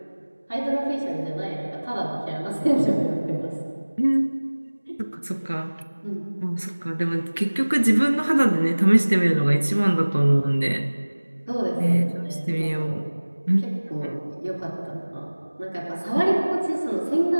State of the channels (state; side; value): inverted; both; correlation -1.00